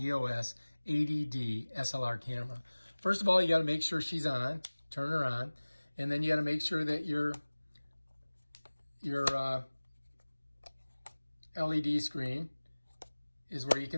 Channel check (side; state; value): both; inverted; correlation -1.00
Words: 80D SLR camera. First of all, you got to make sure she's on, turn her on, and then you got to make sure that your LED screen is where you